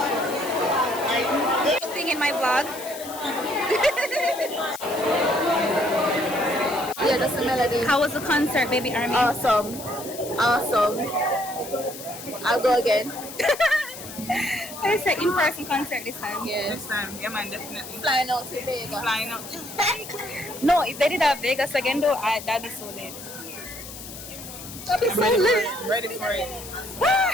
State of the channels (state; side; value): noise; left; hiss, 12 dB below the sound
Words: Thing in my vlog. Yeah, that's the melody. How was the concert, baby Army? Awesome. Awesome. I'll go again. It's an in-person concert this time. Yeah. Next time, yeah man, definitely. Flying out to Vegas. Flying out. No, if they did have Vegas again though, that'd be so lit. That'd be so lit. Ready for it.